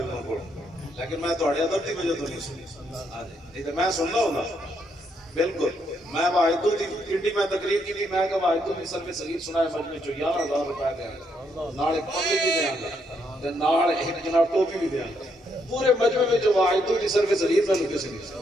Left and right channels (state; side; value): normal; both; correlation 0.75